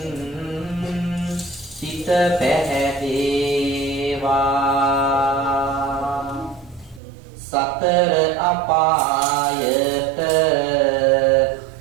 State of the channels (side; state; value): left; drops out; at 7.0 s